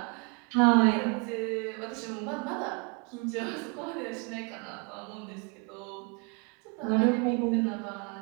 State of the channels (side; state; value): left; quieter; 33.5 dB